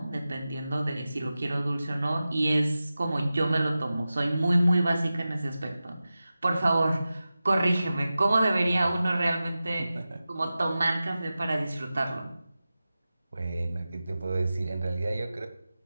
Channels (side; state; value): both; inverted; correlation -0.95